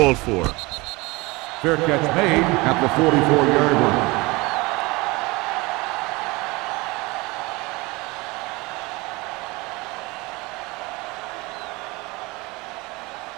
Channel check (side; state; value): left; quieter; 23.9 dB